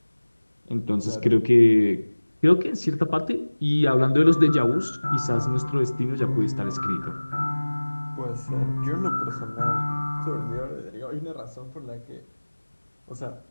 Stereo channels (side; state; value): both; inverted; correlation -1.00